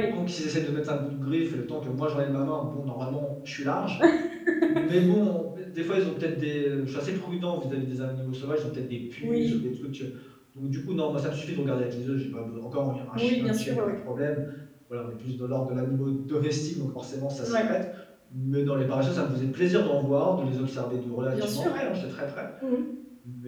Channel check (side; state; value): both; identical; correlation 1.00